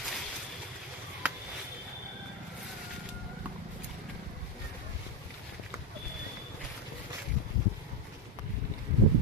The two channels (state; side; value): normal; both; correlation 0.10